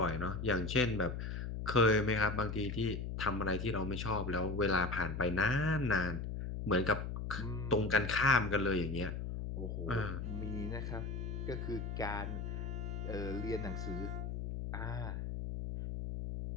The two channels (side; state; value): left; noise; hum, 4 dB below the sound